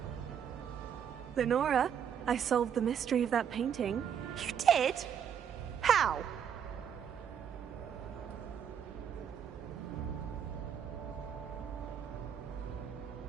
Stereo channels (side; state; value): left; quieter; 8.3 dB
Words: Lenora, I solved the mystery of that painting. You did? How?